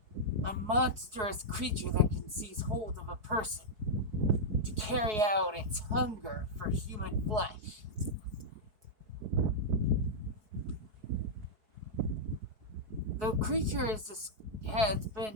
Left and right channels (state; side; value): late; left; 4.7 ms